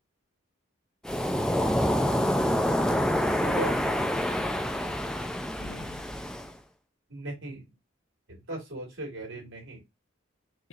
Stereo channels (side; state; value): both; normal; correlation 0.84